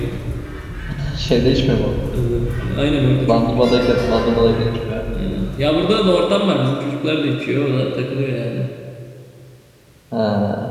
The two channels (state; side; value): identical; both; correlation 1.00